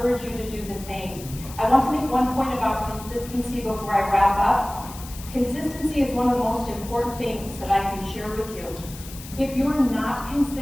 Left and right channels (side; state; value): left; noise; hiss, 15 dB below the sound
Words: you to do the same. I want to make one point about consistency before I wrap up. Consistency is one of the most important things that I can share with you. If you're not